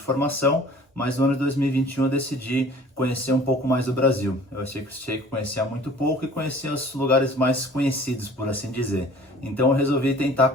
mas no ano de 2021 eu decidi conhecer um pouco mais do Brasil. Eu achei que conhecia muito pouco e conhecia os lugares mais conhecidos, por assim dizer. Então eu resolvi tentar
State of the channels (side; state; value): both; normal; correlation 0.49